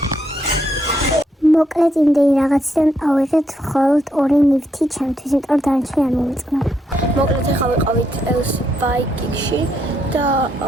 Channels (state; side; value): normal; both; correlation 0.76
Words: მოკლედ იმდენი რაღაციდან ავიღეთ მხოლოდ 2 ნივთი ჩემთვის, იმიტომ რომ დანარჩენი არ მომიწყნა. მოკლედ ეხლა ვიყავით ელსბაიკში და